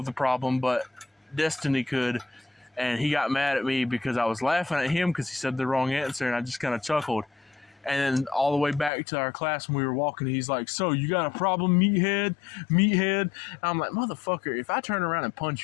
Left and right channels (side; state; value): right; drops out; at 8.9 s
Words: the problem, but Destiny could. And he got mad at me because I was laughing at him because he said the wrong answer, and I just kind of chuckled. And then all the way back to our class when we were walking, he's like, "So, you got a problem, meathead? And I'm like, "Motherfucker, if I turn around and